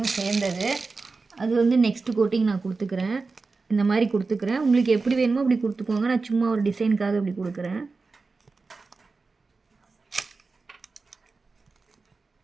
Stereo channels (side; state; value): left; quieter; 4.1 dB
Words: சேர்ந்தது. அது வந்து நெக்ஸ்ட்டு கோட்டிங் நான் கொடுத்துக்கிறேன். இந்த மாதிரி கொடுத்துக்கிறேன். உங்களுக்கு எப்படி வேணுமோ அப்படி கொடுத்துக்கோங்க. நான் சும்மா ஒரு டிசைனுக்காக அப்படி கொடுக்குறேன்.